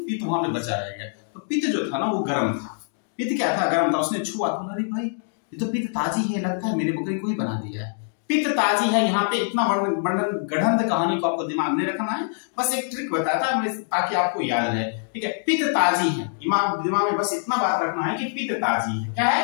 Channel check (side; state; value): right; silent; digital silence